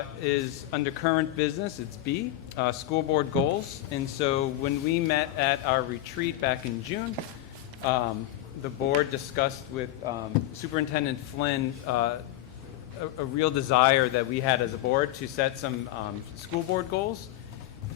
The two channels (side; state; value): right; quieter; 14.4 dB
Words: Is under current business. It's B, school board goals. And so when we met at our retreat back in June, the board discussed with Superintendent Flynn a real desire that we had as a board to set some school board goals.